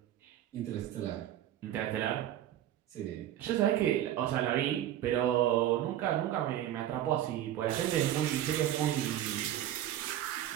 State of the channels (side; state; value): left; quieter; 12.2 dB